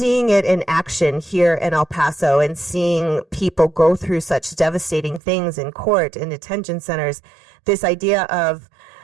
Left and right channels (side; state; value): left; drops out; at 5.2 s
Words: it in action here in El Paso and seeing people go through such devastating things in court and detention centers, this idea of